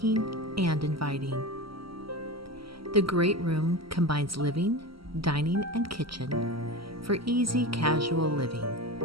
and inviting. The great room combines living, dining, and kitchen for easy, casual living.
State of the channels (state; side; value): late; left; 0.75 ms